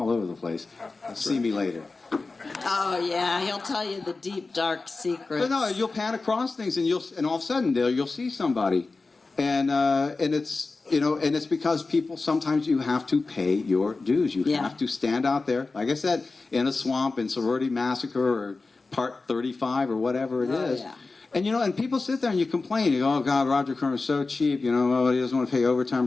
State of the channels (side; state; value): right; quieter; 3.8 dB